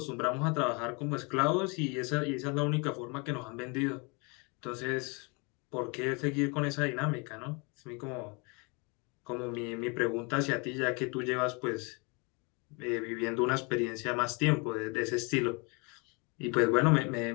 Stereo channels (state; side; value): quieter; right; 31.2 dB